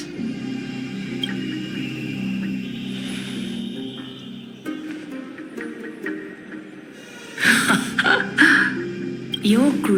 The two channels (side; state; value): both; identical; correlation 1.00